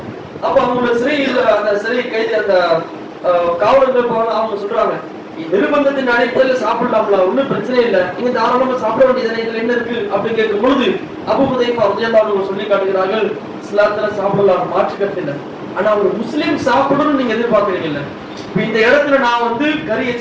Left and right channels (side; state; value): both; identical; correlation 1.00